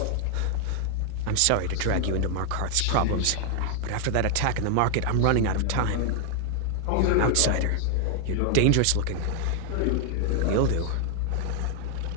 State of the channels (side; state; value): both; different; correlation 0.00